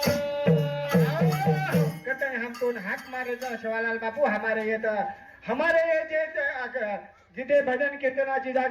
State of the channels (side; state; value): both; identical; correlation 1.00